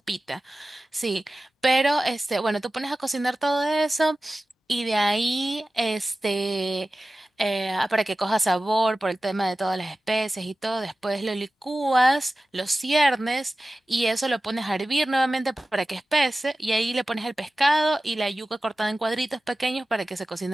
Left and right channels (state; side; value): normal; both; correlation 0.95